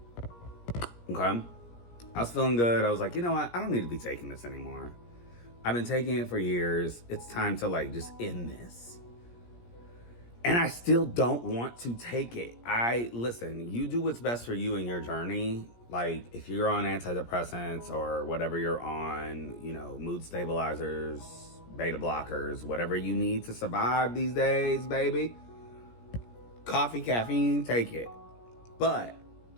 Okay? I was feeling good. I was like, you know what? I don't need to be taking this anymore. I've been taking it for years. It's time to like just end this. And I still don't want to take it. Listen, you do what's best for you in your journey. Like, if you're on antidepressants or whatever you're on, you know, mood stabilizers, beta blockers, whatever you need to survive these days, baby. Coffee, caffeine, take it. But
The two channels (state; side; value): late; right; 17 ms